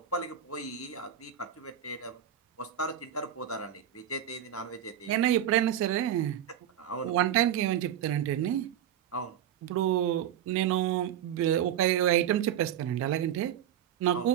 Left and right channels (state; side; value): quieter; left; 10.3 dB